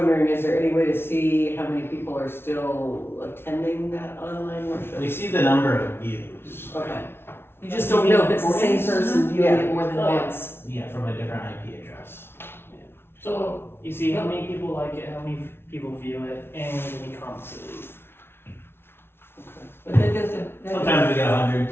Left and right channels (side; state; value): right; late; 0.12 ms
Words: is there any way to see how many people are still attending that online worship? We see the number of views. Okay. You just don't know if it's the same person viewing it more than Oh, yeah. once. Yeah, from a different IP address. So, you see how many people like it, how many people view it, and how many comments it leave. But that doesn't. Sometimes we get 100,